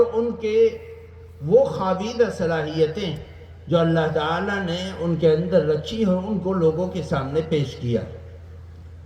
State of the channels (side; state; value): both; identical; correlation 1.00